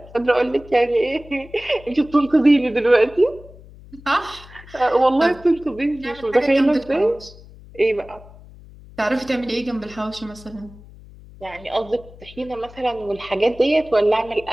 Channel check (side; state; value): left; noise; hum, 20 dB below the sound